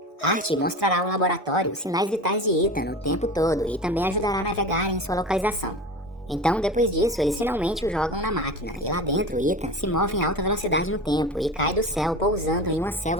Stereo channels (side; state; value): both; normal; correlation 0.31